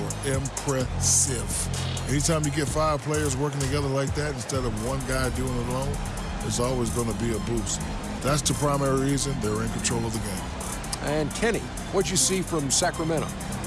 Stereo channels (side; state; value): both; identical; correlation 1.00